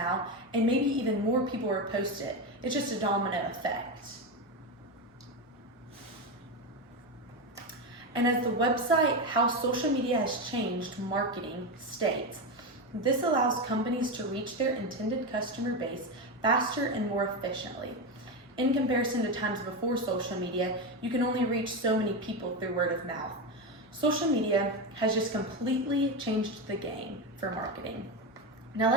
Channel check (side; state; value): both; normal; correlation 0.14